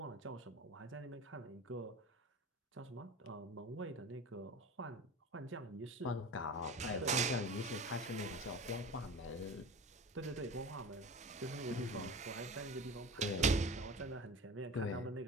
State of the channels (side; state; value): both; normal; correlation 0.34